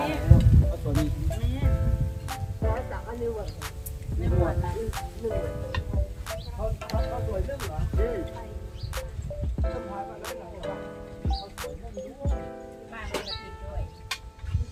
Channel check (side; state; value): both; identical; correlation 1.00